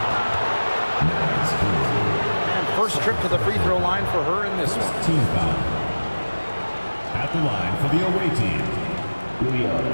And first trip to the free throw line for her in this one. Team foul. At the line for the away team,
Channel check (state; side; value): inverted; both; correlation -1.00